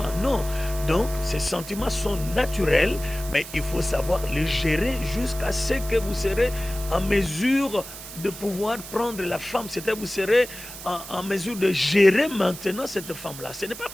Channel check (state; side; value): noise; right; hiss, 13 dB below the sound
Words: Non. Donc ces sentiments sont naturels, mais il faut savoir les gérer jusqu'à ce que vous serez en mesure de pouvoir prendre la femme. C'est-à-dire vous serez en mesure de gérer maintenant cette femme-là. Ce n'est pas